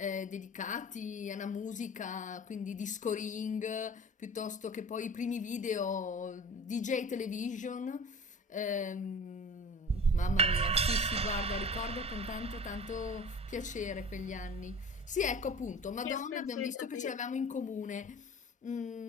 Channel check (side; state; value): both; normal; correlation 0.40